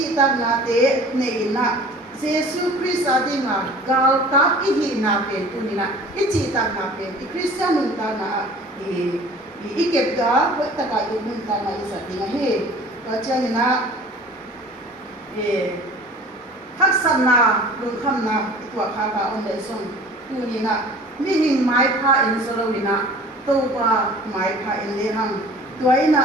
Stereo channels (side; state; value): both; normal; correlation 0.45